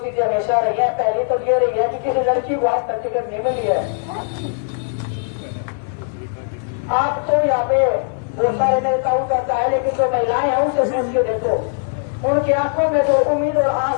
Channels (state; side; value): silent; right; 58 dB below the other